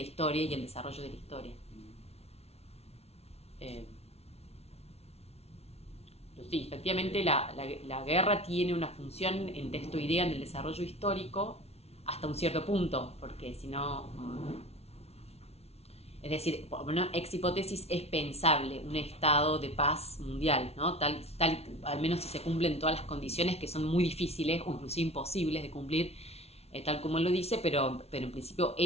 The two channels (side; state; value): right; late; 0.30 ms